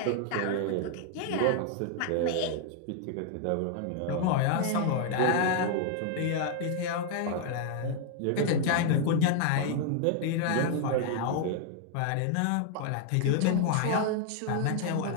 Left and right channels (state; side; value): different; both; correlation 0.00